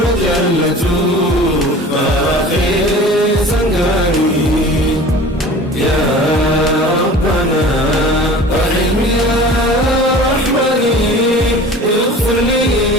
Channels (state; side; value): normal; both; correlation 0.42